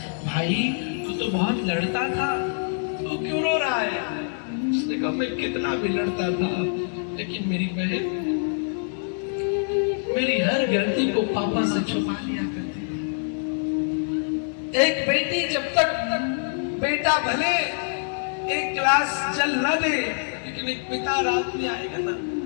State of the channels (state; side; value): silent; right; digital silence